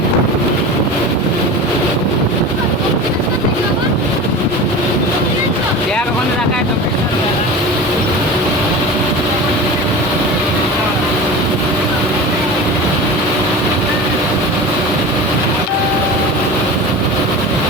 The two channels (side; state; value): both; normal; correlation 0.32